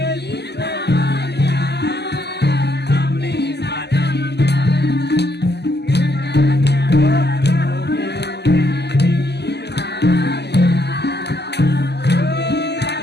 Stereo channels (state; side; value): late; right; 0.49 ms